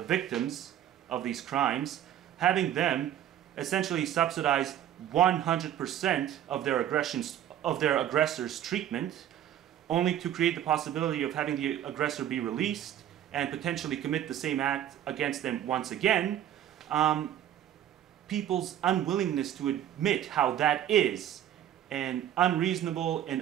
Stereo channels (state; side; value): quieter; left; 11.0 dB